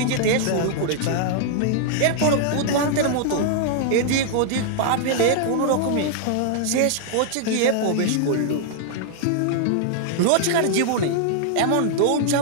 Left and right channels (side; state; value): both; different; correlation -0.01